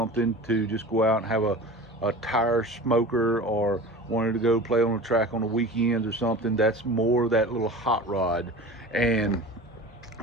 to just go out and have a tire smoker, or wanted to go play on the track on the weekends or something. That's more that little hot rod. And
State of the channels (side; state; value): both; normal; correlation 0.35